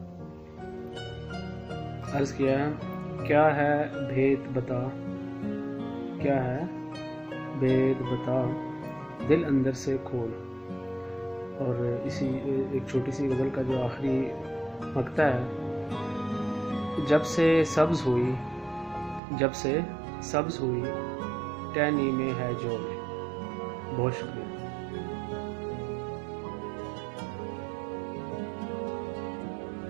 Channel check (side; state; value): left; drops out; at 19.2 s